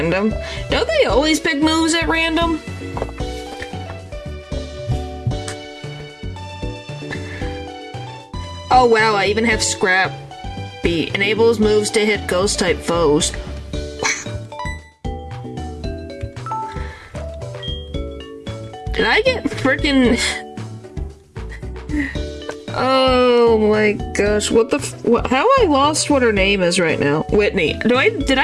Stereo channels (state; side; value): identical; both; correlation 1.00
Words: Don't they always pick moves at random? Oh wow, I even have Scrappy. Enables moves to hit ghost-type foes. Wow. Did I get freaking... Oh my gosh, what the how I lost what her name is right now. Whitney. Did